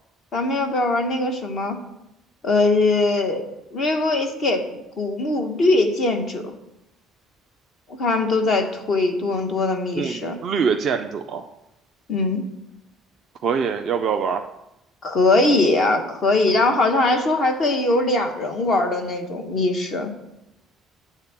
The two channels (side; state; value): both; normal; correlation 0.53